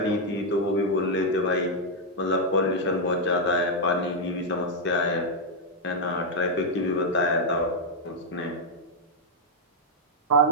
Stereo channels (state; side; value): normal; both; correlation -0.02